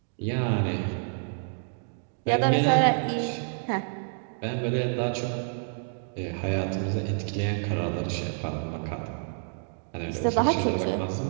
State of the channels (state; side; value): silent; left; digital silence